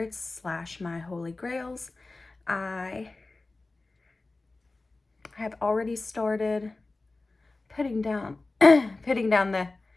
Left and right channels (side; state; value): right; quieter; 3.3 dB